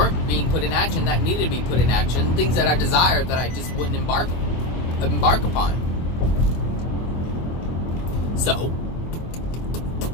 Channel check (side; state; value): right; late; 24 ms